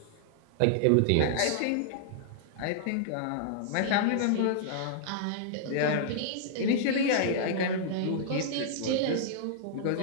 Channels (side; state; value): both; different; correlation -0.01